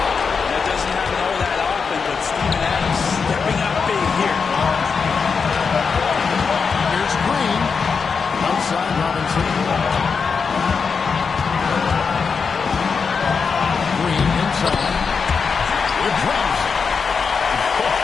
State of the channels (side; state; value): right; quieter; 5.5 dB